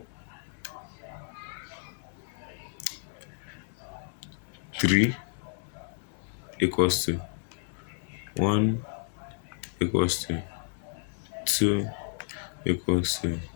3 equals to 1 equals to 2 equals to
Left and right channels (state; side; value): silent; right; 57 dB below the other